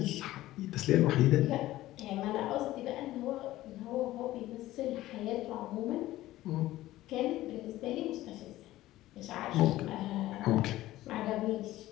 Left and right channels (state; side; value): quieter; right; 15.8 dB